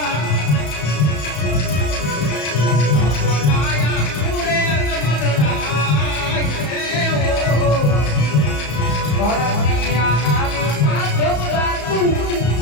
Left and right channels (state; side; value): late; right; 34 ms